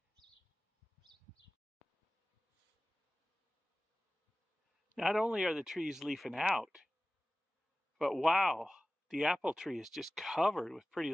Not only are the trees leafing out, but wow, the apple tree is just covered with pretty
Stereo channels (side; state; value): both; normal; correlation 0.97